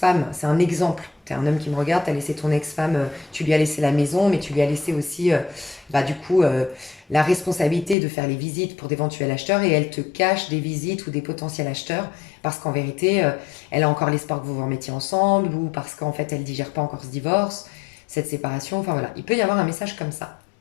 c'est un exemple. Tu es un homme qui me regarde, tu as laissé ton ex-femme, tu lui as laissé la maison, mais tu lui as laissé aussi, bah, du coup, la responsabilité de faire les visites pour d'éventuels acheteurs et elle te cache des visites ou des potentiels acheteurs parce qu'en vérité, elle a encore l'espoir que vous vous remettiez ensemble ou parce qu'en fait, elle digère pas encore ce divorce, cette séparation. Enfin voilà, il peut y avoir un message comme ça.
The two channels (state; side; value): drops out; right; at 8.0 s